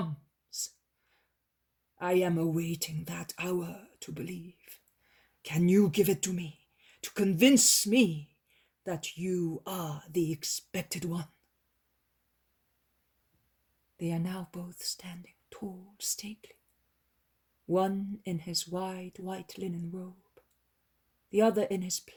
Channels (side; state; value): both; identical; correlation 1.00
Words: I am awaiting that hour to believe. Can you give it to me, to convince me that you are the expected one? They are now both standing tall, stately, one in his wide white linen robe, the other in his